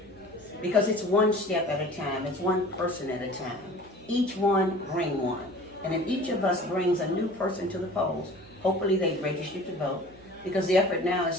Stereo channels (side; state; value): right; noise; hum, 24 dB below the sound